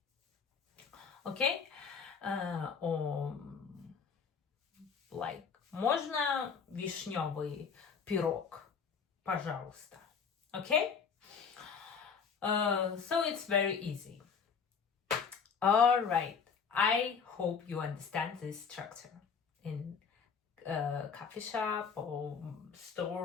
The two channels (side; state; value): right; quieter; 6.1 dB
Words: Okay? Or like, можно вишневый пирог, пожалуйста. Okay? So it's very easy. All right. I hope you understand this structure in coffee shop or